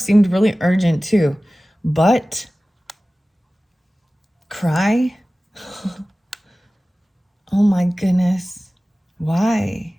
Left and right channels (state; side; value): normal; both; correlation 0.97